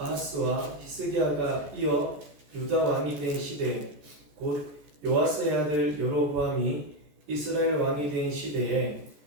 히스기야가 이어 유다 왕이 된 시대, 곧 요아스의 아들 여로보암이 이스라엘 왕이 된 시대에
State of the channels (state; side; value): late; left; 14 ms